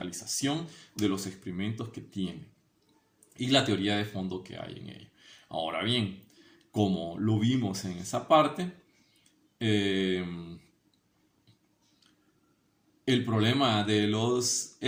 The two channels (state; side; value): identical; both; correlation 1.00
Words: de los experimentos que tienen y la teoría de fondo que hay en ello. Ahora bien, como lo vimos en esa parte, el problema de los